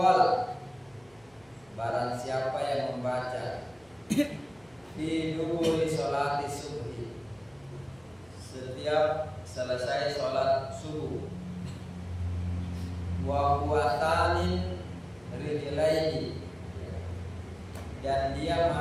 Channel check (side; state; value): right; noise; hum, 30 dB below the sound